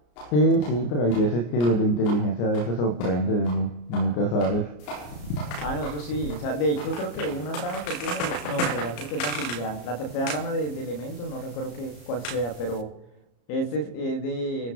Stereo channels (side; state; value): right; late; 34 ms